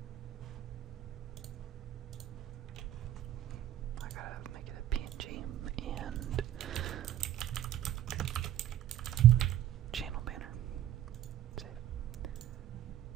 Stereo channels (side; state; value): left; quieter; 12.2 dB